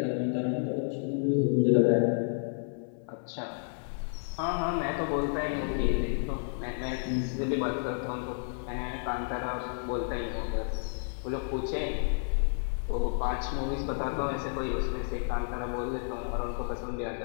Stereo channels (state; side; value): silent; right; 57 dB below the other